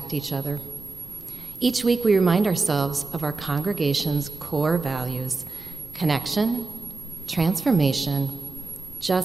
each other. Each week, we remind ourselves of our congregation's core values: connection, transformation,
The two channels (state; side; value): quieter; left; 3.8 dB